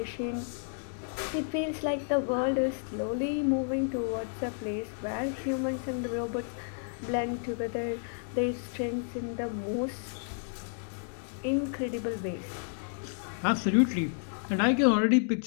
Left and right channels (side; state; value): right; silent; digital silence